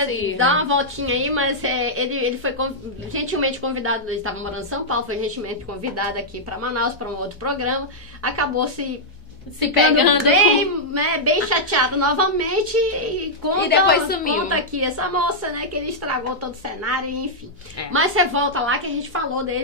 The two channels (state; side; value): normal; both; correlation -0.07